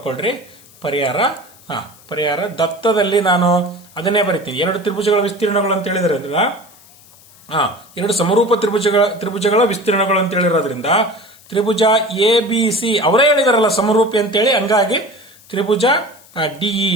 ಪರಿಹಾರ ದತ್ತದಲ್ಲಿ ನಾನು ಅದನ್ನೇ ಬರಿತೀನಿ. 2 ತ್ರಿಭುಜಗಳ ವಿಸ್ತೀರ್ಣಗಳು ಅಂತ ಹೇಳಿದ್ರೆ 2 ಸಮರೂಪ ತ್ರಿಭುಜಗಳ ವಿಸ್ತೀರ್ಣಗಳು ಅಂತ ಹೇಳಿರೋದ್ರಿಂದ ತ್ರಿಭುಜ ಎ ಬಿ ಸಿ ಅವರೇ ಹೇಳಿದಾರಲ್ಲ ಸಮರೂಪಿ ಅಂತೇಳಿ, ಹಂಗಾಗಿ ತ್ರಿಭುಜ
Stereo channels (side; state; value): left; noise; hiss, 25 dB below the sound